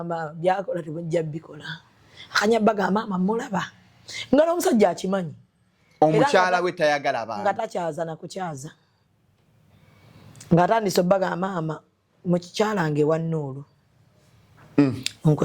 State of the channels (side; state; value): both; identical; correlation 1.00